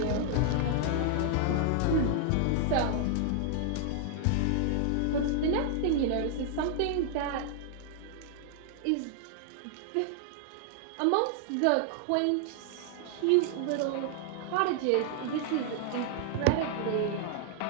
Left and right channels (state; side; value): different; both; correlation 0.00